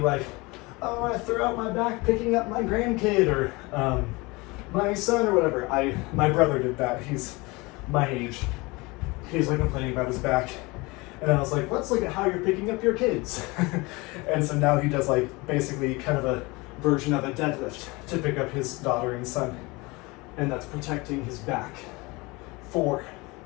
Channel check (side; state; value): right; quieter; 24.5 dB